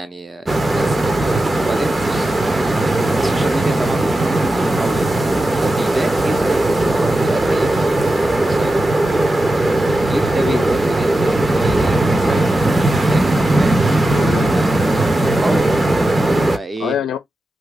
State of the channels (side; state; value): both; normal; correlation 0.91